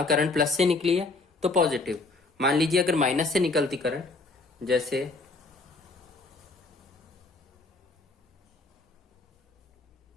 करंट प्लस से निकली है तो पॉजिटिव। मान लीजिए अगर माइनस से निकलती करंट, जैसे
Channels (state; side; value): quieter; right; 3.5 dB